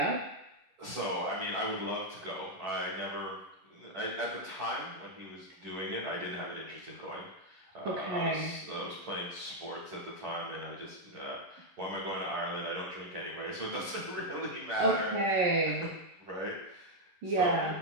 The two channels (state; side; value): late; left; 11 ms